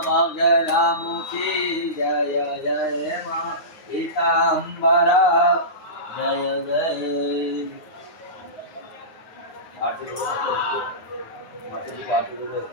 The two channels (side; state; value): right; late; 9.6 ms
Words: बगलामुखी जय जय मां पीताम्बरा जय जय। आरती